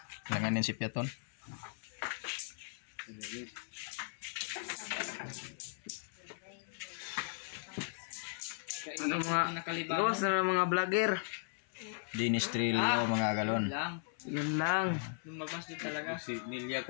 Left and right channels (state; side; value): silent; right; 53 dB below the other